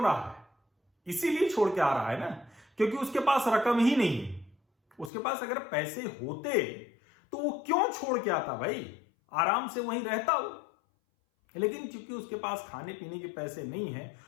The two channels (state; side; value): drops out; right; at 5.1 s